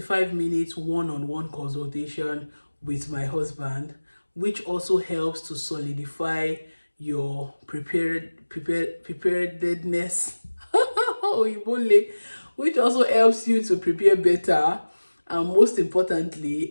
one-on-one consultation with my husband, which also helps to solidify your preparedness, which also helps you to prepare better, and most importantly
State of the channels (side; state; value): both; inverted; correlation -1.00